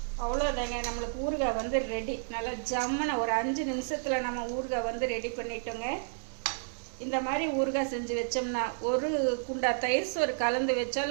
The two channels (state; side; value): silent; left; digital silence